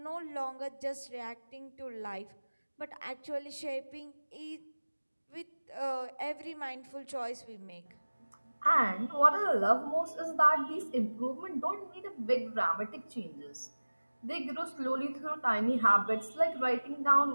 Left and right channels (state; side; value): inverted; both; correlation -1.00